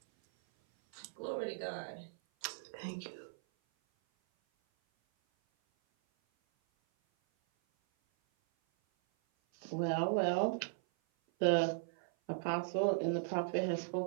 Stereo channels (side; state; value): left; silent; 53 dB below the other